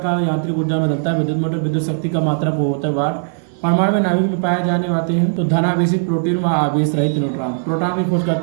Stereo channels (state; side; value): silent; left; 58 dB below the other